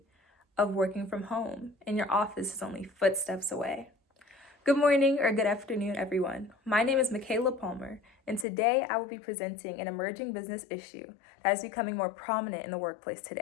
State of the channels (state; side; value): drops out; right; at 8.5 s